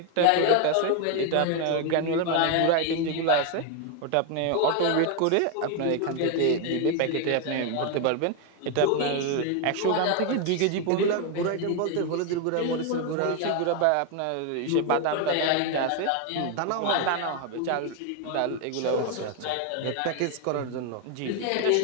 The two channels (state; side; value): different; both; correlation 0.01